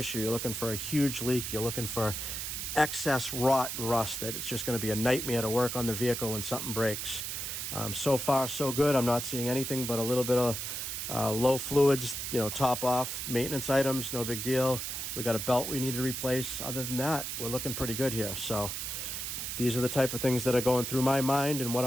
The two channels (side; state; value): right; noise; hiss, 4 dB below the sound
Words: You're looking for a huge leak. You're looking for excess rot and rust that it's just going to be a nightmare to work on the vehicle when something breaks. So far so good. I'm not seeing anything but a little bit of low fluids, top off maintenance items, no big deal. We got a belt we need to replace. Other than that, we're looking pretty good here. So these are the type of things that are going through my mind and what